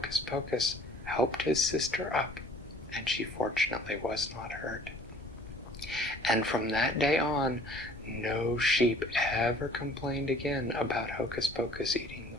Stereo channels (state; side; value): normal; both; correlation 0.53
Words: Pocus helped his sister up, and she fortunately was not hurt. And from that day on, no sheep ever complained again about Hocus Pocus eating the